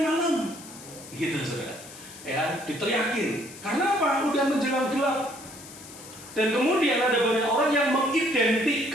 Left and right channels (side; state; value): left; noise; hiss, 16 dB below the sound